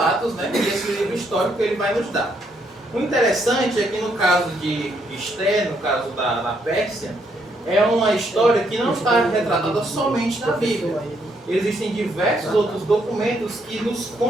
né, desse livro histórico que ele vai nos dar. O interessante é que no caso de Esther, no caso da Pérsia, é uma história que não está retratada somente na Bíblia. Existem diversos outros documentos que nos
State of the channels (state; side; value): normal; both; correlation 0.73